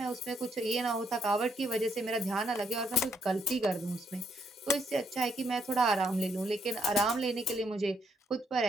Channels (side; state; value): both; normal; correlation 0.74